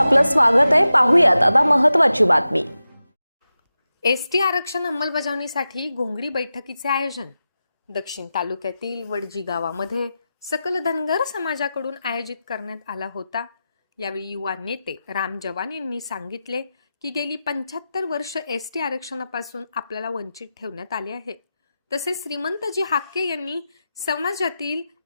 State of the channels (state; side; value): inverted; both; correlation -0.92